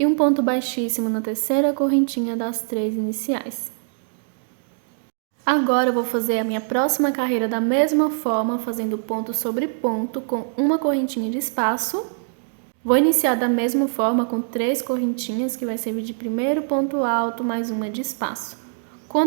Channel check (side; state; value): left; silent; digital silence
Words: um ponto baixíssimo na terceira correntinha das 3 iniciais. Agora, eu vou fazer a minha próxima carreira da mesma forma, fazendo ponto sobre ponto com uma correntinha de espaço. Vou iniciar da mesma forma com 3 correntinhas, que vai servir de primeiro ponto alto mais uma de espaço.